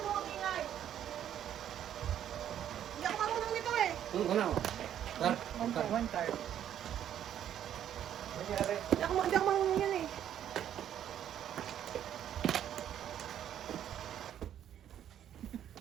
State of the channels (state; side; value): quieter; left; 10.3 dB